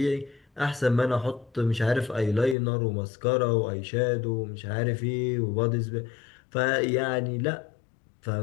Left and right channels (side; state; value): right; drops out; at 2.6 s